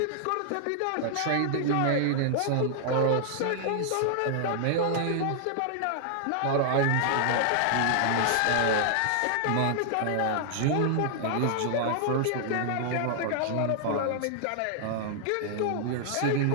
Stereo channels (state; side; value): different; both; correlation -0.01